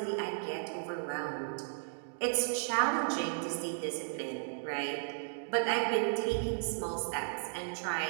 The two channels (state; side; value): silent; left; digital silence